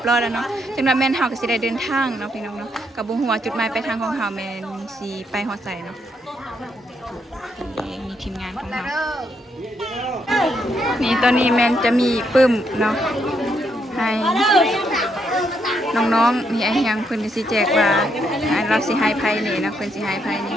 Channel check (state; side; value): normal; both; correlation 0.76